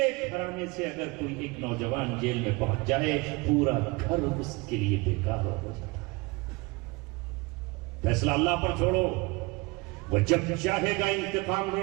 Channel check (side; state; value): left; quieter; 25.2 dB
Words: گھرانے سے اگر کوئی ایک نوجوان جیل میں پہنچ جائے، پورا گھر اس کے لیے بیکار ہو جاتا ہے. فیصلہ اللہ پر چھوڑو. وہ جب چاہے گا انتقام